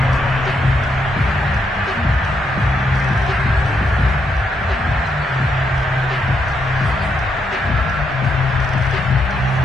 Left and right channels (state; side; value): normal; both; correlation 0.78